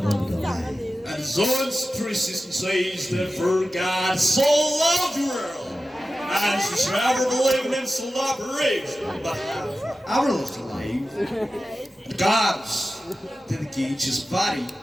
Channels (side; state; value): both; normal; correlation 0.94